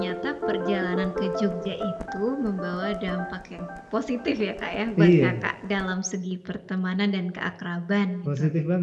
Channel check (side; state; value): both; identical; correlation 1.00